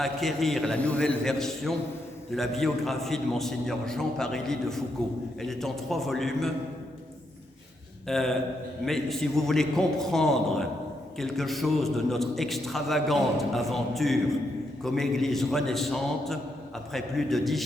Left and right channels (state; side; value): normal; both; correlation 0.80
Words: acquérir la nouvelle version de la biographie de Monseigneur Jean Parilly de Foucault. Elle est en 3 volumes, mais si vous voulez comprendre quelque chose de notre extravagante aventure comme Église renaissante, après plus de 10